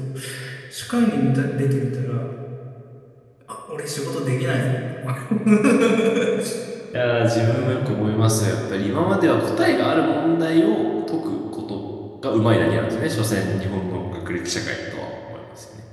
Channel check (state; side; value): identical; both; correlation 1.00